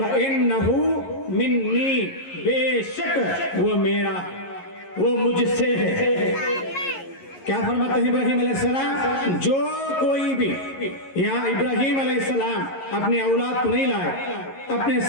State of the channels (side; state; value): right; late; 11 ms